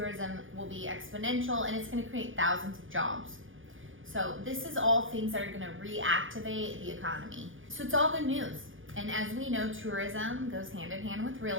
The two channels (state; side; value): late; left; 0.58 ms